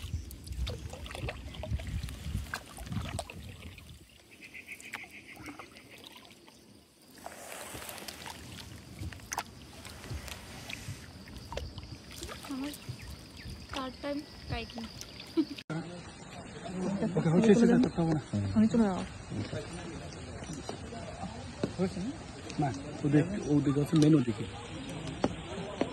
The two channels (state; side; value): identical; both; correlation 1.00